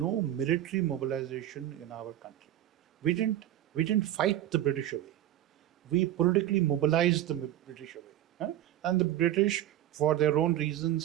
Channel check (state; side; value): quieter; left; 12.7 dB